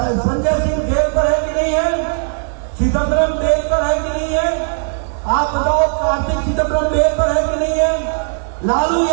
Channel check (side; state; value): left; silent; 68 dB below the other